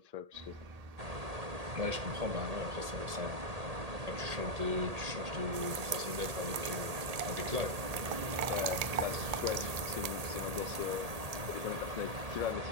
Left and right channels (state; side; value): late; left; 1.8 ms